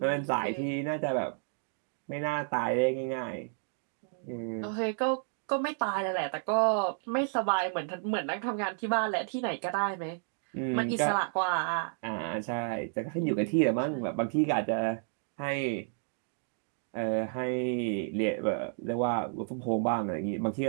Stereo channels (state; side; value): silent; left; digital silence